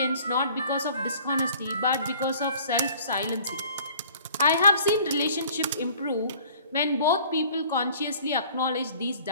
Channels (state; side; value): inverted; both; correlation -0.51